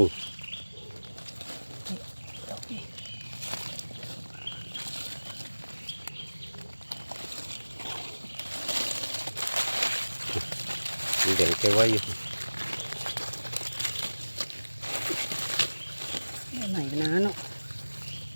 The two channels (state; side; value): inverted; both; correlation -1.00